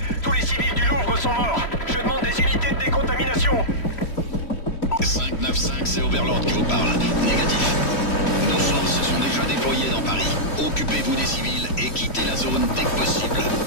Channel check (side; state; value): right; late; 3.1 ms